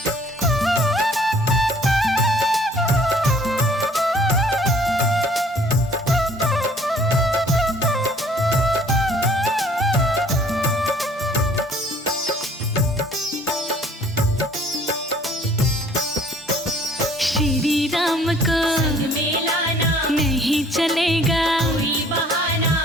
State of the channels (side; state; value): both; normal; correlation 0.56